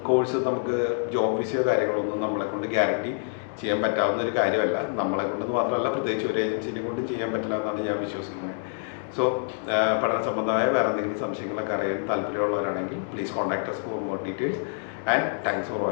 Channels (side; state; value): right; silent; digital silence